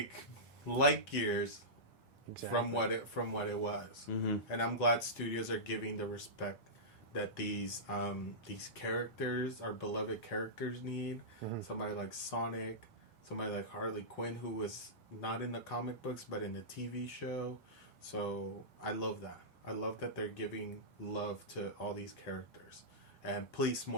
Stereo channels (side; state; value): both; normal; correlation -0.16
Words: light years. Exactly. From what it was, Mm-hmm. and I'm glad studios are giving the respect that these characters, our beloved characters, need. Mm-hmm. Somebody like Sonic, somebody like Harley Quinn, who was not in the comic books but in the TV show. So I love that. I love that they're giving love to all these characters, and please,